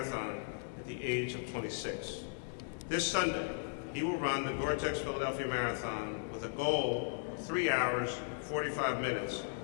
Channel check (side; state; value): right; silent; digital silence